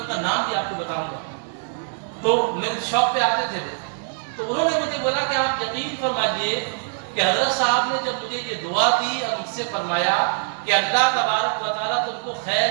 کا نام بھی آپ کو بتاؤں گا۔ تو میرے شاپ پہ آتے تھے وہ، تو انہوں نے مجھے بولا کہ آپ یقین فرمائیے کہ حضرت صاحب نے جب مجھے یہ دعا دی اور مجھ سے فرمایا کہ اللہ تبارک و تعالیٰ تم کو خیر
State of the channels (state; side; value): silent; left; digital silence